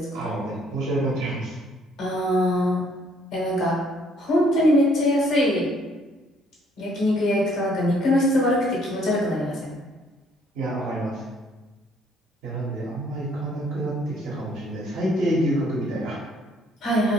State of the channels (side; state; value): both; normal; correlation 0.64